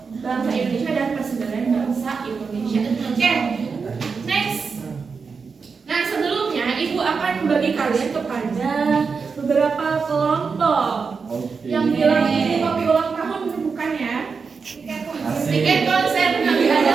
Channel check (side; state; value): left; quieter; 5.2 dB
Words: bangsa Indonesia dan persebaran bangsa Indonesia. Oke, next. Nah sebelumnya ibu akan membagi kalian kepada beberapa kelompok. Yang bilang ini kopi ulang tahun bukan ya? Tiket konser nanti ada.